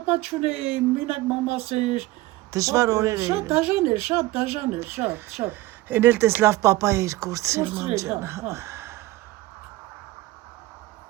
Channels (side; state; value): left; quieter; 18.2 dB